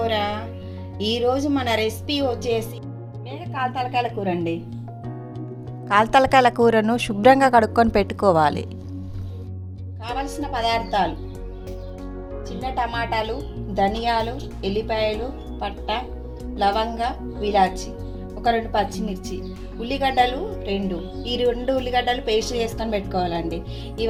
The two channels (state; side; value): identical; both; correlation 1.00